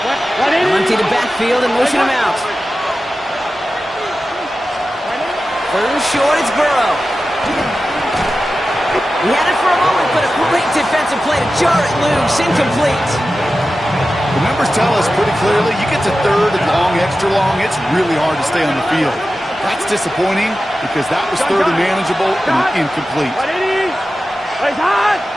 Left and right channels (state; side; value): normal; both; correlation 0.93